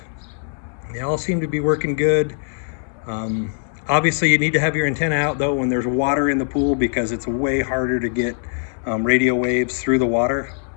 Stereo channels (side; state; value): right; silent; digital silence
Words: They all seem to be working good. Obviously you need to have your antenna out though when there's water in the pool, because it's way harder to get radio waves through the water.